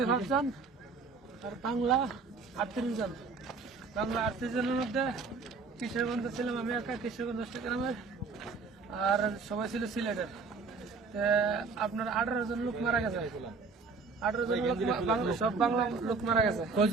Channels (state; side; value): quieter; left; 4.5 dB